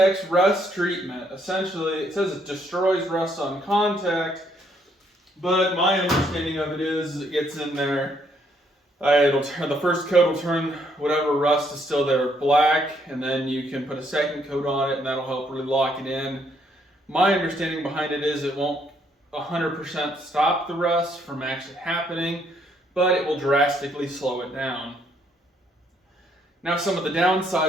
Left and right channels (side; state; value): both; normal; correlation 0.70